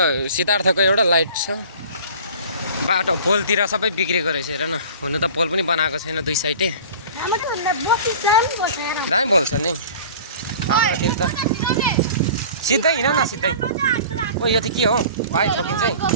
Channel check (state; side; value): inverted; both; correlation -0.42